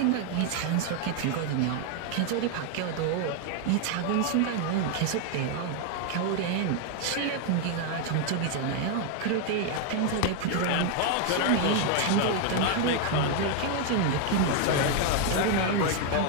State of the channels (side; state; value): both; different; correlation 0.01